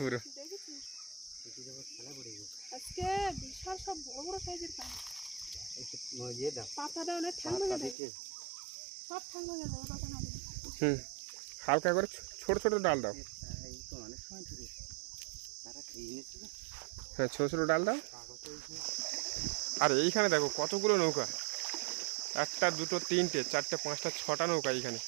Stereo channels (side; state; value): left; drops out; at 8.0 s